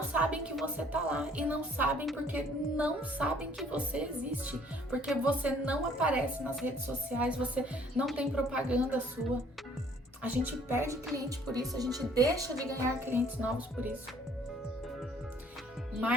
sabem que você tá lá, e não sabem porque não sabem que você existe, porque você não aparece nas redes sociais, você não tem propaganda sua. A gente perde cliente por isso, a gente deixa de ganhar clientes novos por isso.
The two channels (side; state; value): both; normal; correlation 0.59